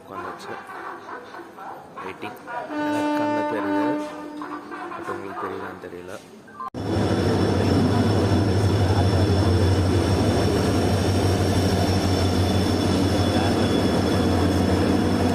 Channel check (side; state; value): both; identical; correlation 1.00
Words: உட்காந்துச்சு. வெயிட்டிங். எனக்கு கண்ணு தெரியுது, பட் உங்களுக்கு தெரியுதான்னு தெரியல.